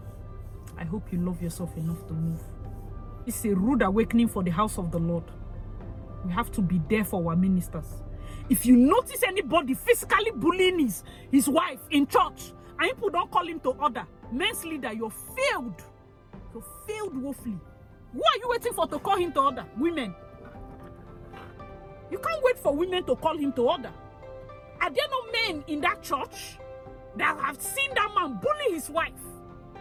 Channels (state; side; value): identical; both; correlation 1.00